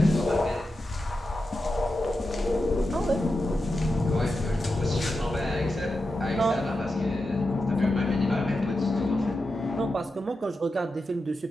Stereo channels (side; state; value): both; normal; correlation 0.89